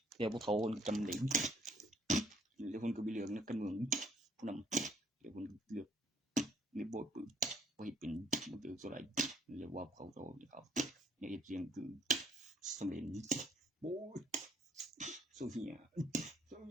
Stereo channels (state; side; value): normal; both; correlation 0.64